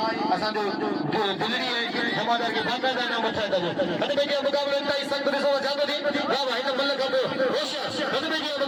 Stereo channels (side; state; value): both; identical; correlation 1.00